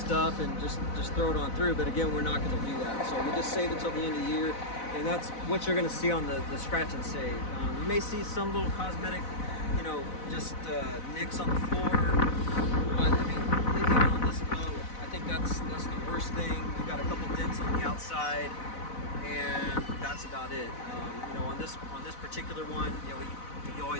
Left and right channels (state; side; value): late; right; 4.0 ms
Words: and just throw it on through, but again, we're not going to do that. So we just save it till the end of the year, and that's what you're going to see on the scratch and save. You may see some little cosmetic, you know, just nicks on the floor, but I mean, even on this boat, I think that's the worst thing. You got a couple dents on the outside, and that's about it. You know, on this particular one, you know, you